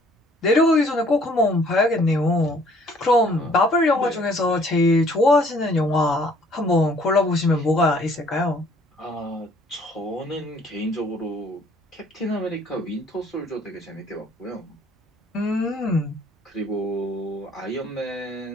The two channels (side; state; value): both; normal; correlation 0.59